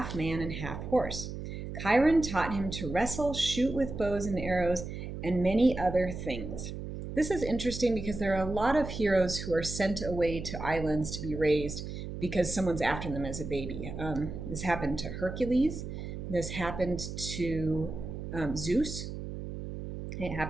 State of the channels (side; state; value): right; noise; hum, 7 dB below the sound